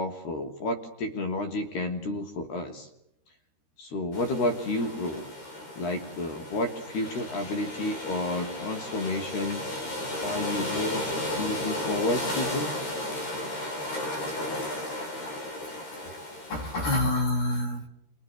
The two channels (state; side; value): late; right; 13 ms